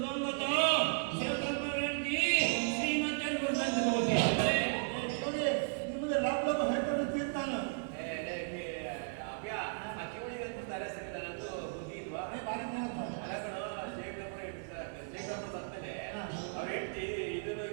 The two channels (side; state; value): left; silent; 54 dB below the other